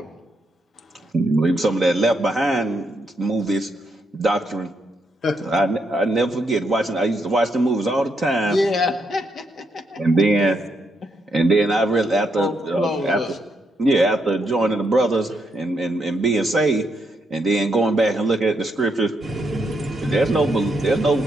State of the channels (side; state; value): both; normal; correlation 0.79